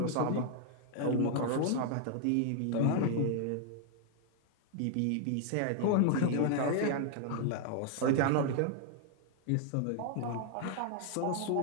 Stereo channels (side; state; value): both; different; correlation 0.00